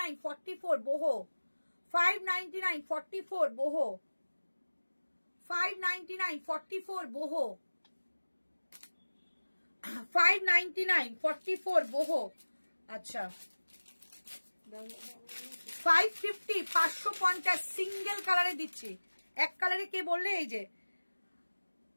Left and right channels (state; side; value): inverted; both; correlation -1.00